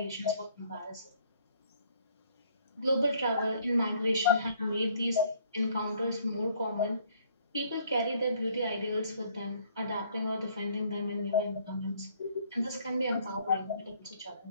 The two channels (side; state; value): both; inverted; correlation -0.62